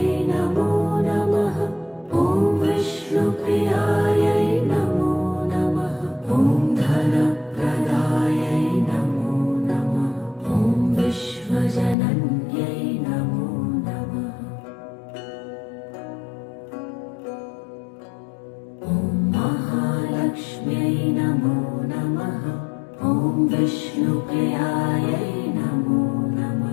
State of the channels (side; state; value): right; drops out; at 12.0 s